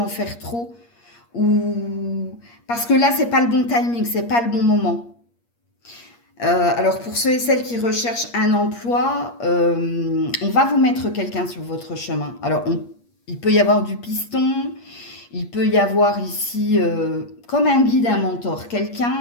faire trop, ou... parce que là, c'est pas le bon timing, c'est pas le bon moment. Alors pour ceux et celles qui recherchent un emploi, on va vous mettre quelqu'un sur votre chemin. Alors il peut y avoir du piston, il peut y avoir ici comme un guide, un mentor,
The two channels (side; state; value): right; late; 8.5 ms